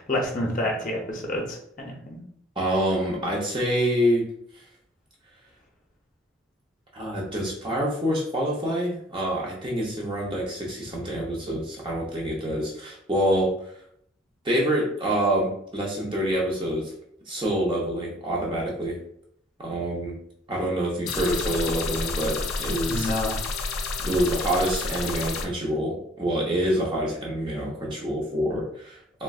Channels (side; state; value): both; normal; correlation 0.54